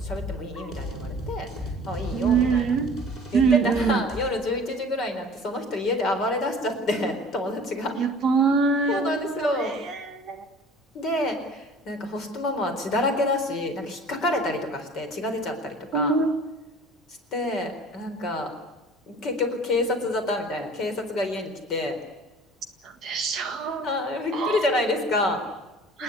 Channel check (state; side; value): normal; both; correlation 0.46